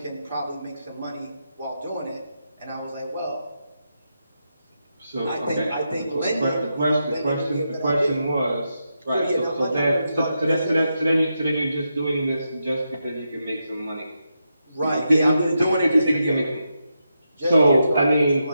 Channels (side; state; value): both; inverted; correlation -0.85